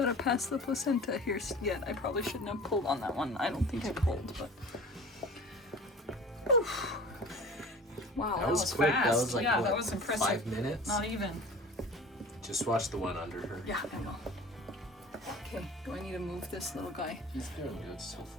pass the placenta here yet. I probably shouldn't have pulled on that one. I don't think I pulled, but. Oof. Wow, that was quick. fast. That was like, yeah, what, that was impressive. 5 minutes? Not even. Just watch the one under her. Yeah, I will. Okay, do I need to move this little guy? He's doing good so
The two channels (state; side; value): normal; both; correlation 0.41